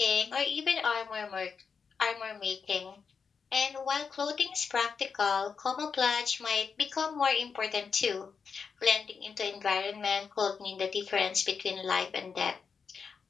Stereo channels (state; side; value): quieter; right; 5.8 dB